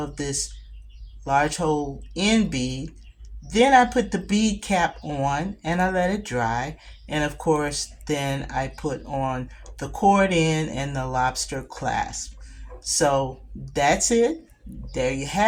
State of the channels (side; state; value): both; identical; correlation 1.00